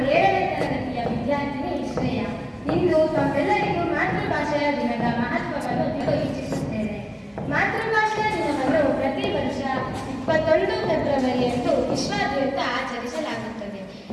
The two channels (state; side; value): identical; both; correlation 1.00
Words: ತರಗತಿ ವಿದ್ಯಾರ್ಥಿನಿ ಶ್ರೇಯ. ಇಂದು ತಮ್ಮೆಲ್ಲರಿಗೂ ಮಾತೃಭಾಷೆಯ ದಿನದ ಮಹತ್ವವನ್ನು ತಿಳಿಸಲು ಇಚ್ಛಿಸುತ್ತೇನೆ. ಮಾತೃಭಾಷೆಯ ದಿನವನ್ನು ಪ್ರತಿ ವರ್ಷ 21 ಫೆಬ್ರವರಿಯಂದು ವಿಶ್ವಾದ್ಯಂತ ಆಚರಿಸಲಾಗುತ್ತದೆ.